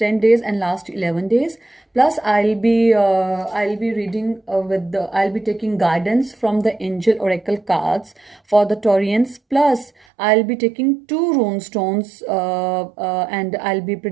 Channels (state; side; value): drops out; left; at 9.9 s